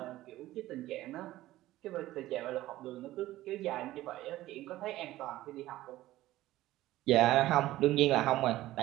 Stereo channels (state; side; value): quieter; left; 15.8 dB